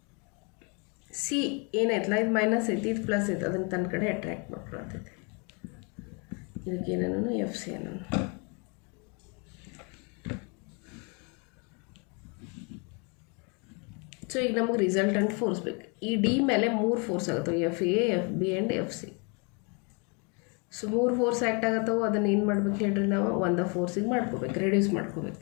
ಸಿ ಏನಾಯ್ತಲ್ಲ, ಇದು ಮೈನಸ್ ಐತಿ, ಇದು ಪ್ಲಸ್ ಐತಿ, ಅದನ್ನು ತನ್ನ ಕಡೆ ಅಟ್ರ್ಯಾಕ್ಟ್ ಮಾಡ್ಕೊಳ್ತೈತಿ. ಇದಕ್ಕೆ ಏನನ್ನು ಎಫ್ ಸಿ ಅನ್ನೋನು. ಸೊ ಈಗ ನಮಗೆ ರಿಸಲ್ಟೆಂಟ್ ಫೋರ್ಸ್ ಬೇಕು. ಈ ಡಿ ಮೇಲೆ 3 ಫೋರ್ಸ್ ಆಗುತ್ತವೆ, F A, F B and F C. So 3 force act ಆಗತ್ತವೆ. ಅದನ್ನು ಏನು ಮಾಡ್ಬೇಕು ಹೇಳ್ರಿ, ನಾವು ಒಂದು ಫೋರ್ಸಿಗೆ ಮಾಡ್ಕೋಬೇಕು, ರೆಡ್ಯೂಸ್ ಮಾಡ್ಕೋಬೇಕು.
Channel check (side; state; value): right; quieter; 33.9 dB